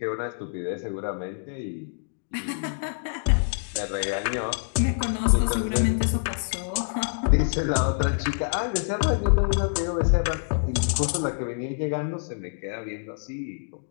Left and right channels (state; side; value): silent; right; digital silence